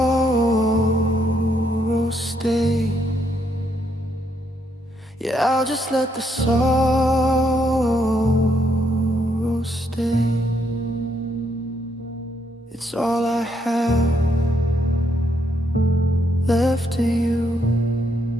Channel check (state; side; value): normal; both; correlation 0.75